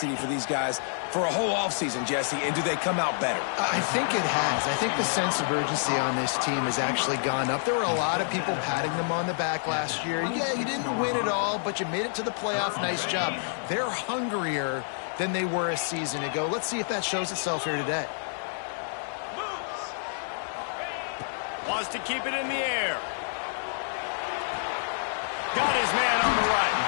for these guys for a whole offseason, Jesse, and do they come out better? I think it has. I think the sense of urgency on this team has actually gone up. There were a lot of people patting them on the back last year. Yeah, you didn't win it all, but you made it to the playoff. Nice job. They're hungrier than they were a season ago. Let's see if that shows itself here today. Wants to keep it in the air. Got his man on the right.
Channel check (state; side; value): silent; right; digital silence